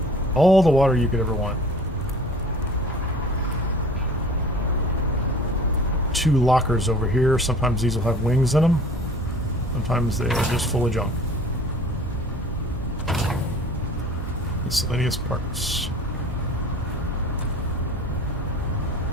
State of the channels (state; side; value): normal; both; correlation 0.46